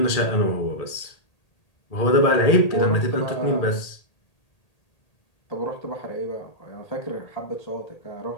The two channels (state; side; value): late; right; 1.8 ms